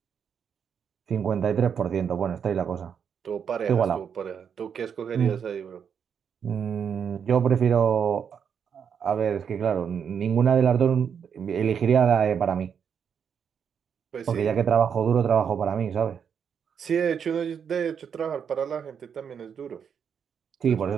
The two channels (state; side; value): quieter; left; 7.4 dB